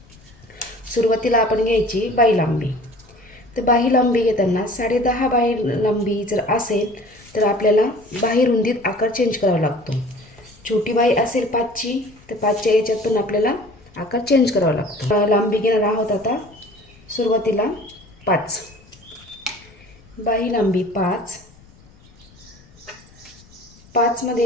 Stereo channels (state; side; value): noise; left; rumble, 26 dB below the sound